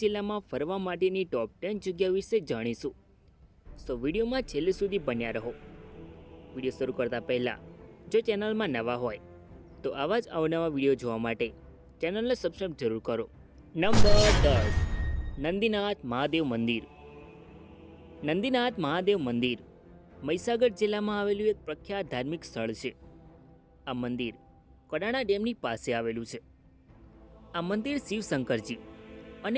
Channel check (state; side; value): identical; both; correlation 1.00